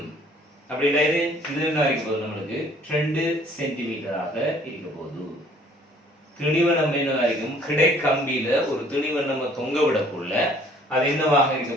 அப்படின்னா இது என்ன இருக்க போகுது, நம்மளுக்கு 2 சென்டிமீட்டராக இருக்க போகுது. திணிவை நம்ம என்ன இருக்கும், கிடை கம்பியில ஒரு திணிவை நம்ம தொங்க விடக்குள்ள அது என்னவாக இருக்க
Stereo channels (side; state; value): both; normal; correlation 0.57